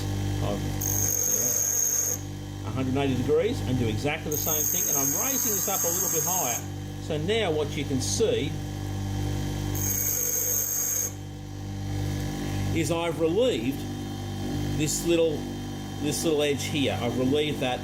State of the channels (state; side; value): identical; both; correlation 1.00